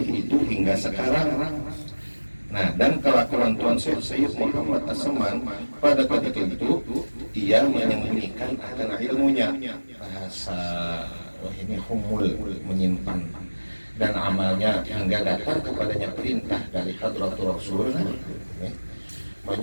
itu hingga sekarang. Nah, dan kelakuan Tuan Syekh Sayyid Muhammad As-Saman pada ketika itu ia menyembunyikan akan ilmunya, bahasa ini humul, menyimpan, dan amalnya hingga datang kepadanya perintah dari Hadratul Rasul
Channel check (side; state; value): both; inverted; correlation -1.00